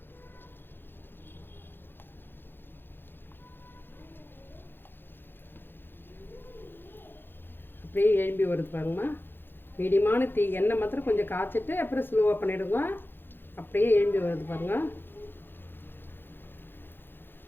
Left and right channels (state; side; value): late; right; 0.10 ms